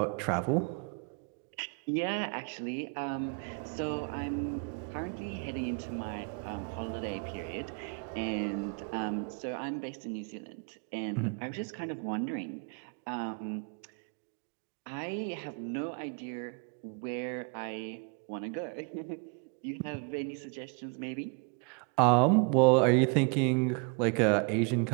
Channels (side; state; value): left; quieter; 34.6 dB